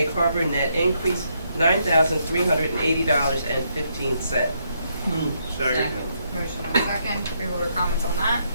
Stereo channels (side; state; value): both; inverted; correlation -0.76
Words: Harbor. Net increase $9,380.15. Second. Motion and a second. Freeholder comments on that?